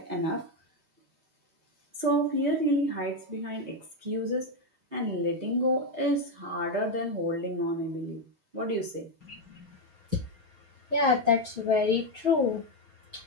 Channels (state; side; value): late; left; 6.4 ms